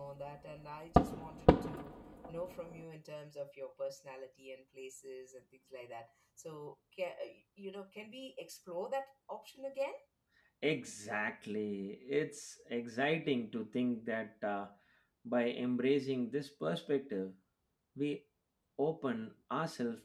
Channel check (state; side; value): identical; both; correlation 1.00